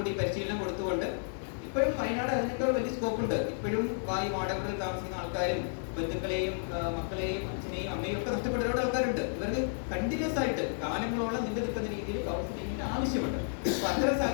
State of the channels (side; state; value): right; silent; 56 dB below the other